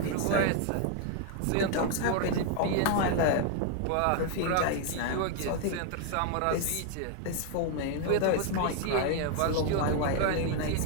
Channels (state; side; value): different; both; correlation 0.00